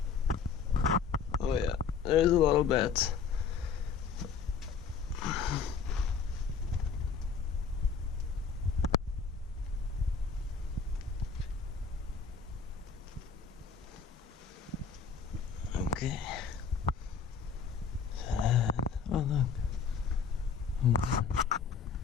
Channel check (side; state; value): right; quieter; 5.9 dB